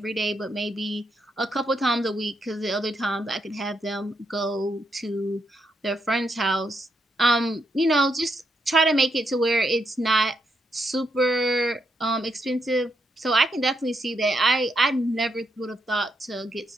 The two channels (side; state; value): both; normal; correlation 0.79